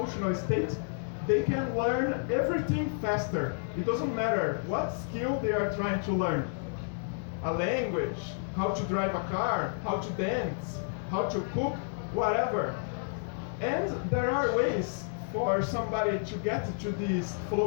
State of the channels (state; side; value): silent; right; 57 dB below the other